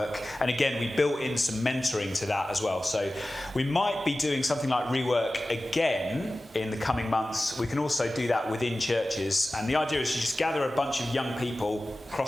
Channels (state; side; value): normal; both; correlation 0.96